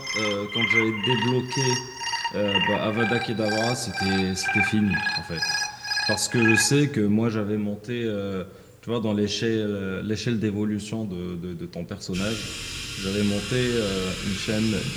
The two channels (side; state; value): both; identical; correlation 1.00